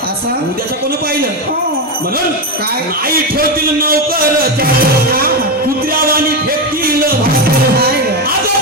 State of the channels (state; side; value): normal; both; correlation 0.11